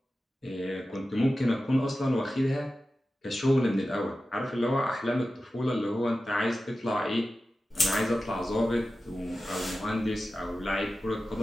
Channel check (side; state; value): both; normal; correlation 0.94